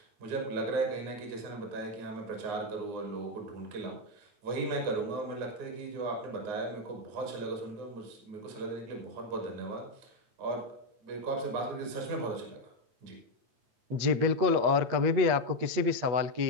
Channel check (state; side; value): late; left; 8.3 ms